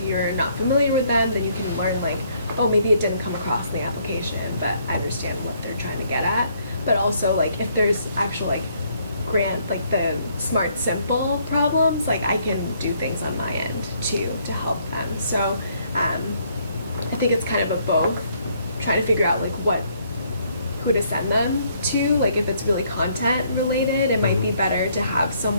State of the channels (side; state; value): both; inverted; correlation -0.67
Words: you're not familiar with them, then you can learn like, oh, maybe it didn't come across in the application, but I understand what they're trying to get at. But also like if there's actual like grant, like the smart simple problems, like I can do things on my end to help them. So I think it's kind of a both, trying to figure out like who to send them to. Like if it's really content related, it might be better to have